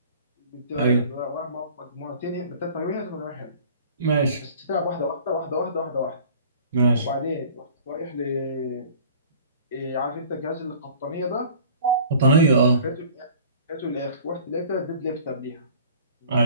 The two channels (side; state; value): both; inverted; correlation -0.47